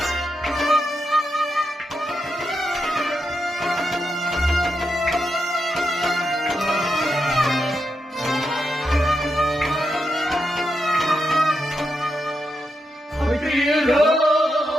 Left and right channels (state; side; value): normal; both; correlation 0.85